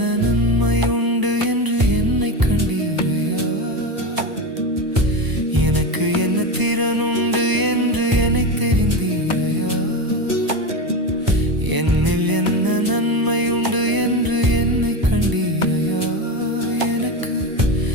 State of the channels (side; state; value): left; late; 1.0 ms